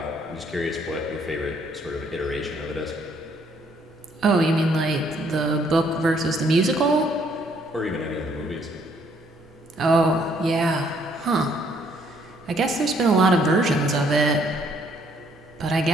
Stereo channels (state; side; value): normal; both; correlation 0.66